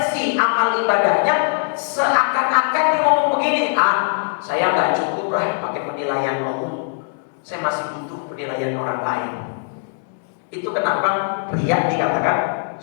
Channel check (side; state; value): right; silent; digital silence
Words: amal ibadahnya, seakan-akan dia ngomong begini, saya nggak cukup lah pakai penilaian Allah, saya masih butuh penilaian orang lain. Itu kenapa riya dikatakan